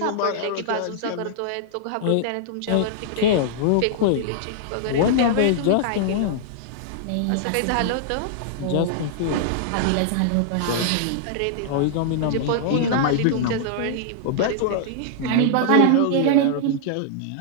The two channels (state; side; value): different; both; correlation -0.01